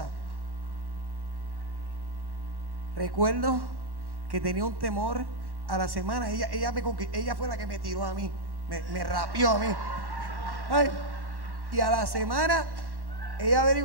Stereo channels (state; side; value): late; left; 1.1 ms